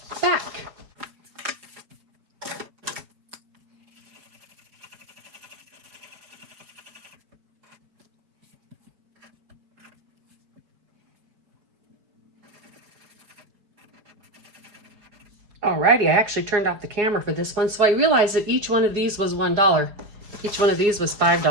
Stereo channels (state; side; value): late; left; 4.9 ms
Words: back. Alrighty, I actually turned off the camera for this one, so I realized that each one of these was $1. Each one of these was